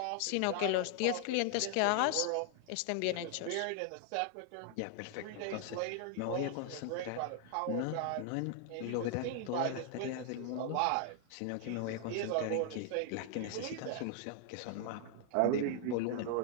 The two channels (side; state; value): both; different; correlation 0.00